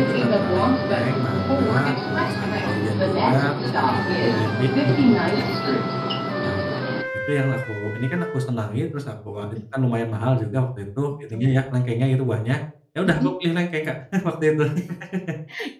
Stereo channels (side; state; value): both; identical; correlation 1.00